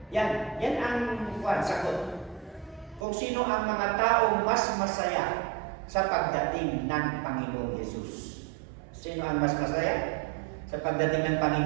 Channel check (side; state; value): left; drops out; at 3.1 s